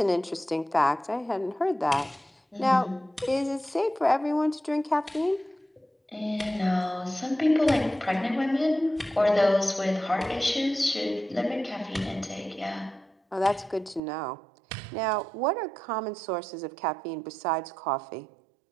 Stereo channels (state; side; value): drops out; left; at 14.0 s